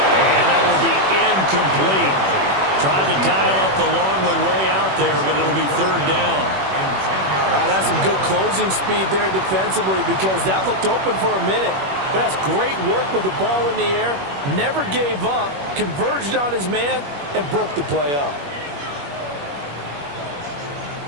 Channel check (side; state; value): left; late; 21 ms